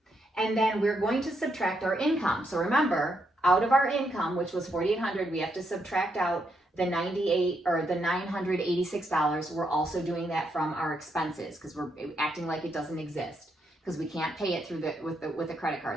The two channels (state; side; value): normal; both; correlation 0.79